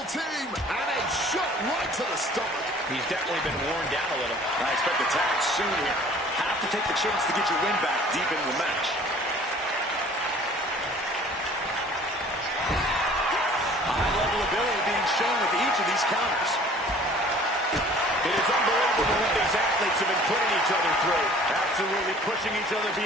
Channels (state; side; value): normal; both; correlation 0.50